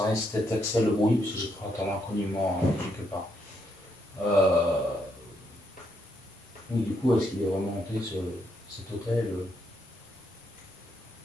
reste cet accès le bruit, parce que j'ai pris un inconnument quelque part. Oui, du coup, est-ce qu'il est vraiment monté cet hôtel?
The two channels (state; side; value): normal; both; correlation 0.77